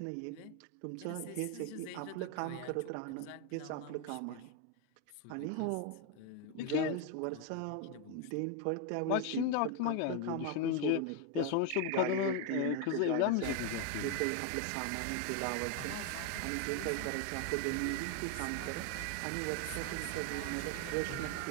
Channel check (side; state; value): both; different; correlation 0.01